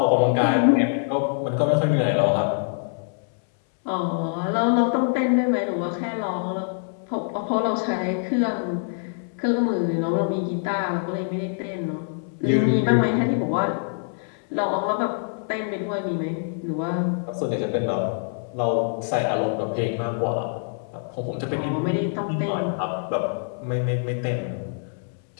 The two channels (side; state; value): right; silent; 62 dB below the other